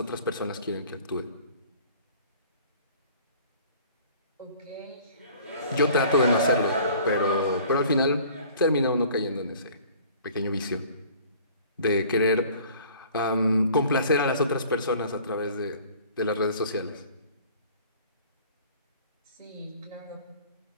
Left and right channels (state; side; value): inverted; both; correlation -0.50